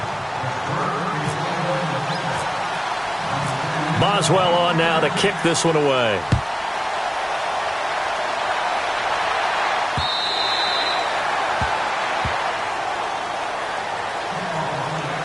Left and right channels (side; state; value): both; identical; correlation 1.00